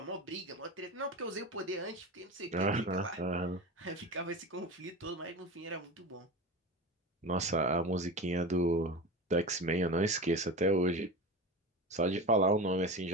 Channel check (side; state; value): both; normal; correlation 0.27